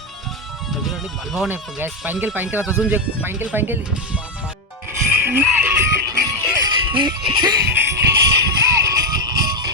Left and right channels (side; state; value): both; normal; correlation 0.06